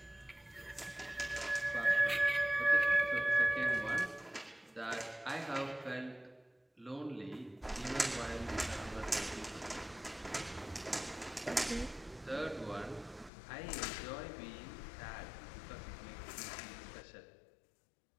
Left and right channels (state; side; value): drops out; right; at 13.3 s